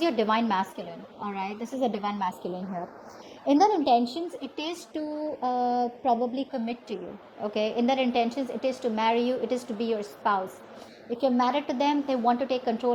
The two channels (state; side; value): identical; both; correlation 1.00